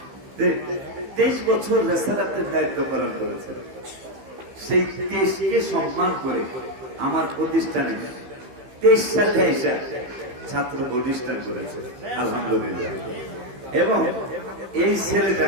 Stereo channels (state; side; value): late; left; 15 ms